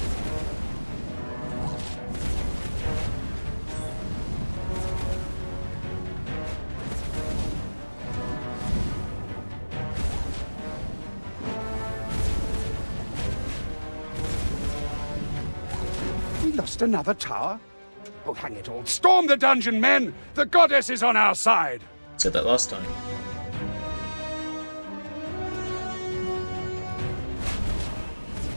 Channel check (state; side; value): inverted; both; correlation -1.00